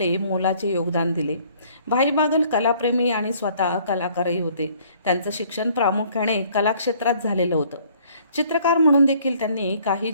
मोलाचे योगदान दिले. भाई बागल कलाप्रेमी आणि स्वतः कलाकारही होते. त्यांचं शिक्षण प्रामुख्याने कलाक्षेत्रात झालेलं होतं. चित्रकार म्हणून देखील त्यांनी काही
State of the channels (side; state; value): both; inverted; correlation -0.59